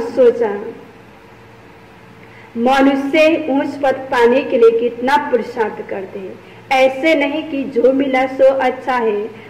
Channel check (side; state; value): both; identical; correlation 1.00